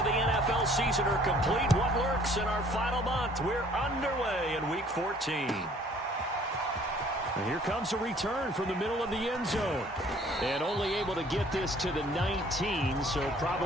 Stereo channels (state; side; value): normal; both; correlation 0.56